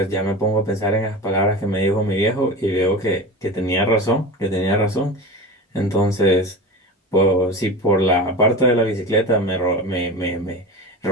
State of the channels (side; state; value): both; normal; correlation 0.29